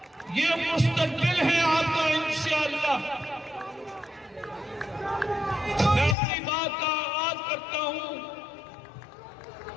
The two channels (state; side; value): drops out; right; at 6.2 s